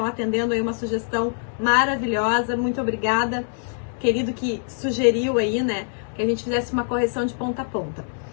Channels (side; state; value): right; silent; digital silence